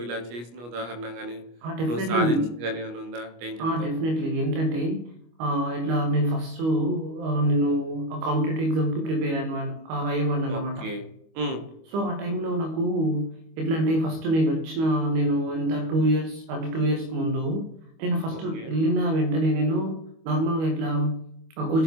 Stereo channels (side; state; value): left; late; 25 ms